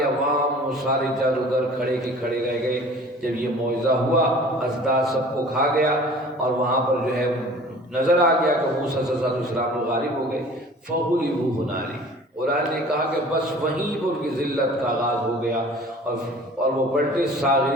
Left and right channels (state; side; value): normal; both; correlation 0.46